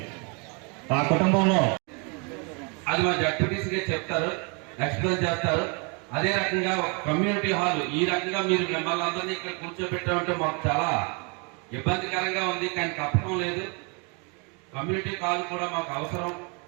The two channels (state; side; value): quieter; left; 33.5 dB